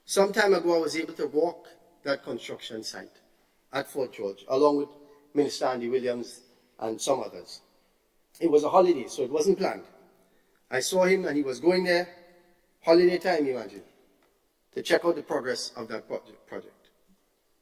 Some time ago, I was able to walk that construction site at Fort George, along with Minister Andy Williams and some others. It was a holiday, so it wasn't planned. I saw him and he was going there, holiday time, imagine, to check out the progress of that project.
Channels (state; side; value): identical; both; correlation 1.00